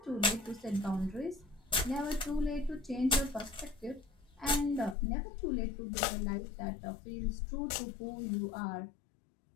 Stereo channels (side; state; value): right; drops out; at 5.0 s